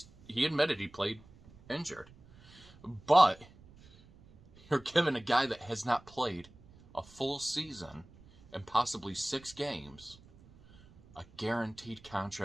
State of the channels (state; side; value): noise; right; rumble, 24 dB below the sound